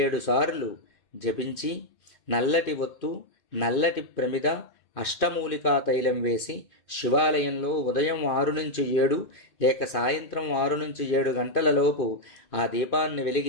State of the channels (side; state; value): right; late; 2.5 ms